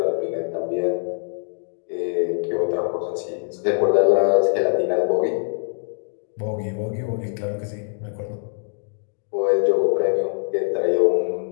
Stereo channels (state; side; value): silent; right; 63 dB below the other